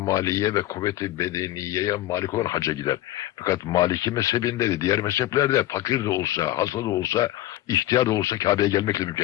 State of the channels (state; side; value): quieter; right; 14.9 dB